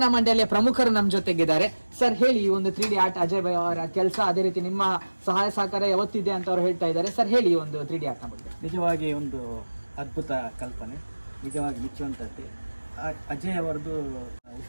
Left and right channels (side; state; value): both; inverted; correlation -1.00